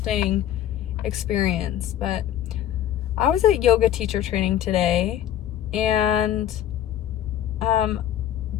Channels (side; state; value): right; quieter; 11.4 dB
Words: experience. But I was at yoga teacher training today, and